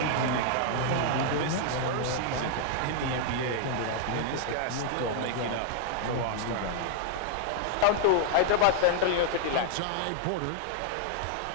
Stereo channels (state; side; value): different; both; correlation 0.00